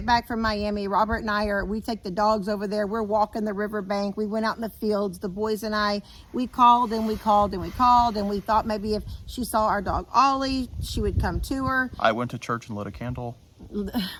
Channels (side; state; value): both; identical; correlation 1.00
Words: back from Miami. Robert and I we take the dogs over there. We're walking the riverbank. We went out in the fields. The boys and I, we called and we called and we called, and we thought maybe if she saw our dog Ollie, she would come to her. I went to church and lit a candle.